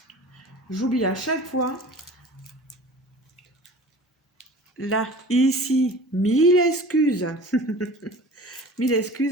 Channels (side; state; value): both; normal; correlation 0.41